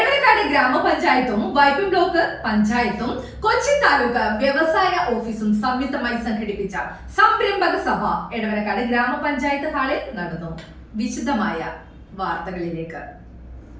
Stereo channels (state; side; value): identical; both; correlation 1.00